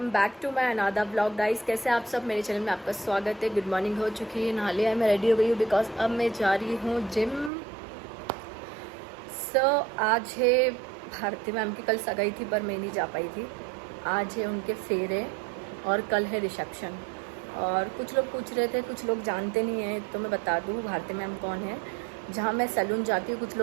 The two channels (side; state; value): left; drops out; at 7.5 s